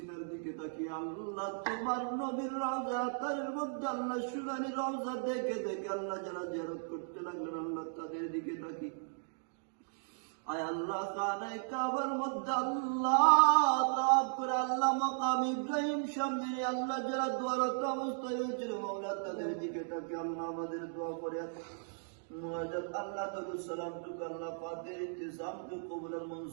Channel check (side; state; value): left; silent; digital silence